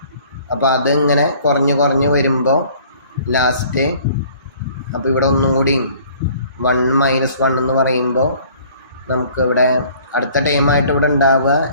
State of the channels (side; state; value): both; inverted; correlation -0.54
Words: അപ്പോൾ അത് ഇങ്ങനെ കുറഞ്ഞ് വരുമ്പോൾ ലാസ്റ്റ്, അപ്പോൾ ഇവിടെ ഒന്നും കൂടി 1 മൈനസ് 1 എന്ന് പറയുമ്പോൾ നമുക്ക് ഇവിടെ അടുത്ത ടൈമായിട്ട് ഇവിടെ ഉണ്ടാവുക